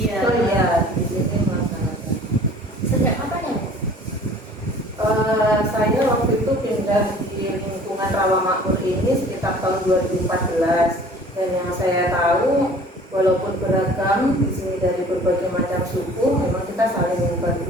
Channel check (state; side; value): normal; both; correlation 0.49